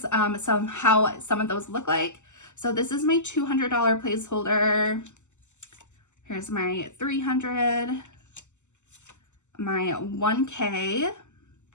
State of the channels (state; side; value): late; right; 0.84 ms